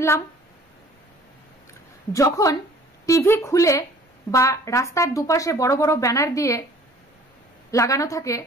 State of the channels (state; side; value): normal; both; correlation 0.51